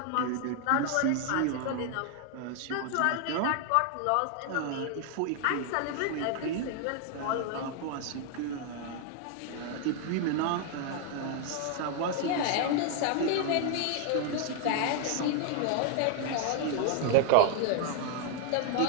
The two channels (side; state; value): both; different; correlation 0.00